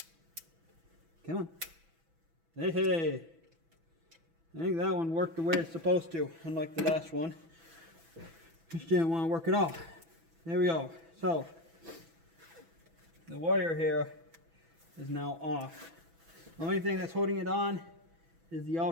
Come on. Hey, hey. I think that one worked the way it's supposed to, unlike the last one. Just didn't want to work at all. There we go. So, the wire here is now off. The only thing that's holding it on is the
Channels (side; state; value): left; late; 6.1 ms